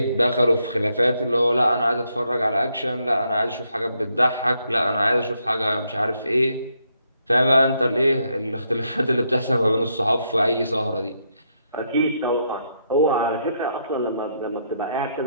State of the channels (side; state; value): both; inverted; correlation -0.77